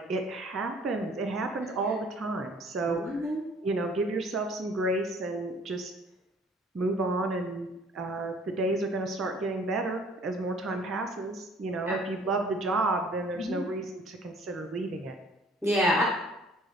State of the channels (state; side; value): normal; both; correlation 0.55